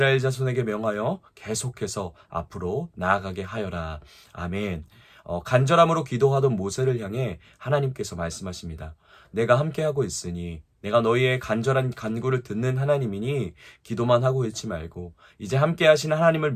자손에게 명하여 계속해서 앞으로 나아가게 하여라. 아멘. 간절함으로 기도하던 모세를 향해 하나님께서 말씀하십니다. 내가 함께하고 있으니 내가 너희의 간절한 간구를 듣는 하나님이니 기도만 하고 있지 말고 이제 함께 하시는 하나님을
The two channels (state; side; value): identical; both; correlation 1.00